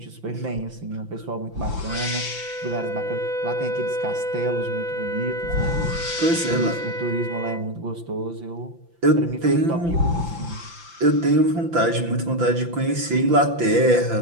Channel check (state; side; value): late; left; 5.9 ms